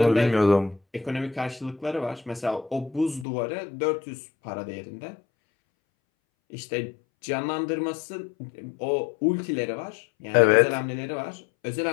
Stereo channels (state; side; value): drops out; right; at 3.2 s